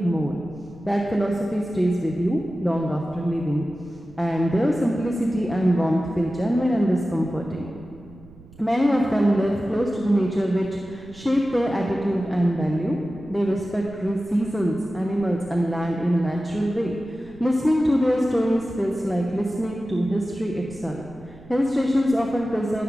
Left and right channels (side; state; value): right; noise; rumble, 22 dB below the sound